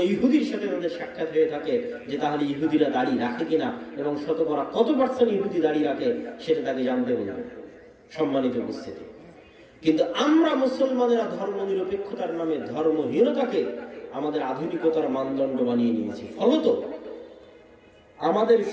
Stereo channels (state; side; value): identical; both; correlation 1.00